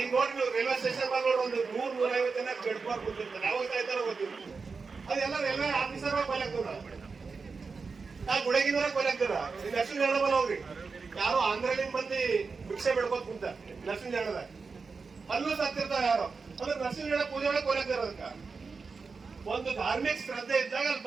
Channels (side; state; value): left; quieter; 4.7 dB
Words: ನೋಡಿ ನೀವು ರೈಲ್ವೆ ಸ್ಟೇಷನ್ ಬಂದ್ ನೋಡಿ ಒಂದು 100-150 ಜನ ಬೆಳ್ಕೊಬಾರ್ ಬಂದಿರ್ತಾರೆ, ಯಾವಾಗ ಸಾಯ್ತಾರ ಗೊತ್ತಿಲ್ಲ. ಅದೆಲ್ಲ ರೈಲ್ವೆ ಆಫೀಸರ್ ಕೊಯ್ಲಾಗ್ತದ, ನಾ ಗುಡಗಿನವರ ಕೊಯ್ಲಾಗ್ತದ. ಲಕ್ಷ್ಮೀ ನಾರಾಯಣ ಹೋಗ್ರಿ, ಯಾರೋ ಆಂಧ್ರಲಿಂದ ಮಂದಿ ಭಿಕ್ಷೆ ಬೆಳ್ಕೋತ್ ಕುಂತ ಲಕ್ಷ್ಮೀ ನಾರಾಯಣದಾಗ ಅಲ್ಲೂ ಸತ್ತಿರ್ತಾವ ಯಾರೋ. ಅಂದ್ರೆ ನರಸಿಂಹ ನಾರಾಯಣ ಪೂಜೆ ಒಳಗೆ ಕೊಯ್ಲಾಗ್ತಾರ. ಅದಕ್ಕ ಒಂದು ಧಾರ್ಮಿಕ ಶ್ರದ್ಧೆ ಇದ್ದಾಗ ಅಲ್ಲಿ